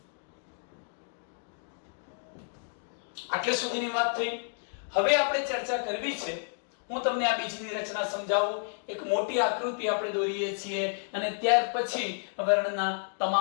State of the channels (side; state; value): right; silent; digital silence